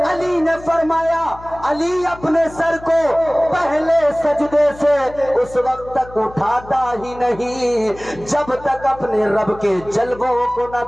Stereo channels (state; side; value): noise; left; hum, 18 dB below the sound